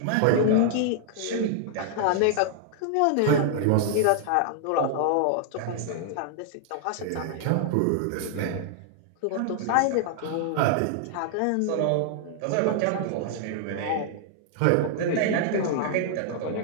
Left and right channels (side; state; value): both; different; correlation -0.01